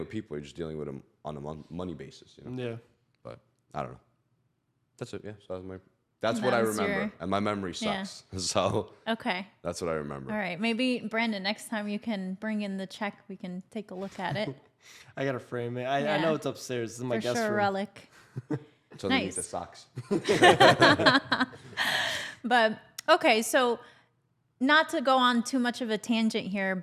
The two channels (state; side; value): identical; both; correlation 1.00